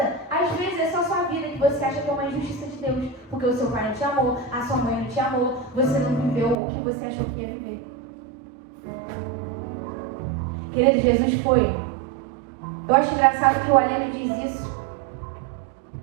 Às vezes é só sua vida que você acha que é uma injustiça de Deus. Porque o seu pai não te amou, a sua mãe não te amou, você não viveu o que você achou que ia viver. Querido, Jesus foi. Eu acho engraçado que o Aleno diz isso.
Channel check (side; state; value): left; drops out; at 6.6 s